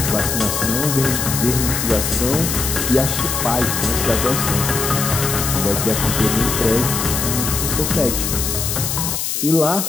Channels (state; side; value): noise; left; hiss, 2 dB below the sound